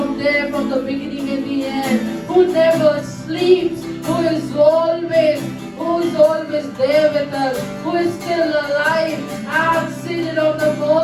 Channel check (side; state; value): both; identical; correlation 1.00